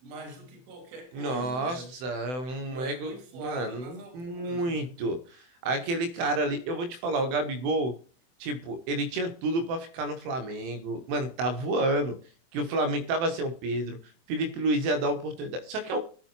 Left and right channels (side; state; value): left; late; 24 ms